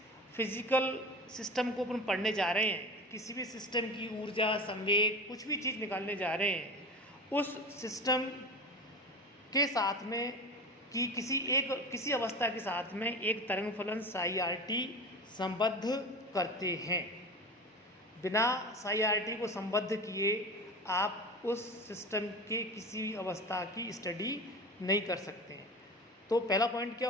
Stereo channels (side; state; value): both; normal; correlation 0.31